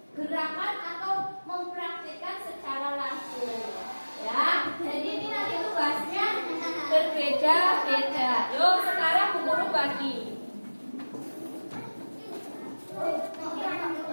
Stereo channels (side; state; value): both; inverted; correlation -1.00